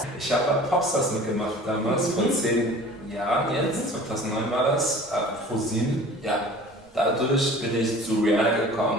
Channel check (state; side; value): normal; both; correlation 0.44